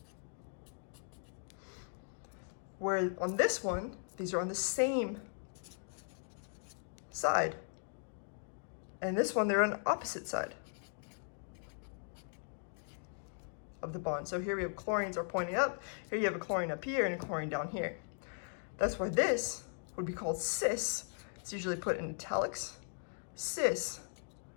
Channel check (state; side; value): silent; right; digital silence